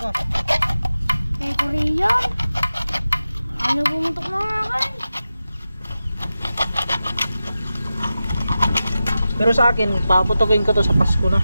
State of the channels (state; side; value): inverted; both; correlation -0.93